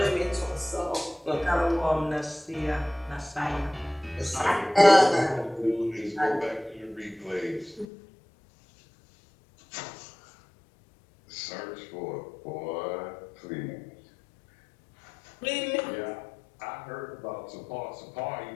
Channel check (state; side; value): drops out; right; at 7.9 s